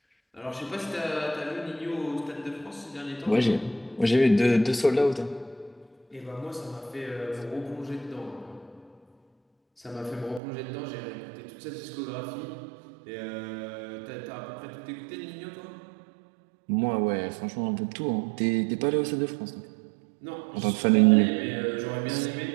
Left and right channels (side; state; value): left; drops out; at 10.4 s